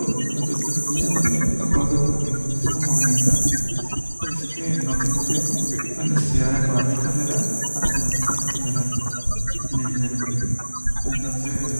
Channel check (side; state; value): both; inverted; correlation -1.00